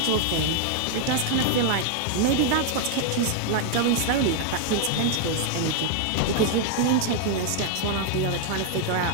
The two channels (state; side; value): different; both; correlation 0.00